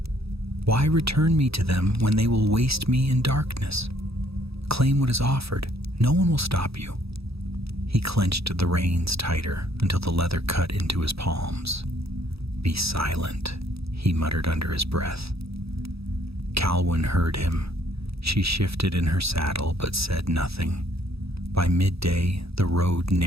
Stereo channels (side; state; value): left; late; 0.77 ms